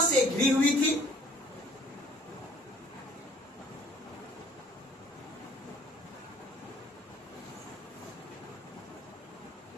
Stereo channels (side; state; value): both; normal; correlation 0.56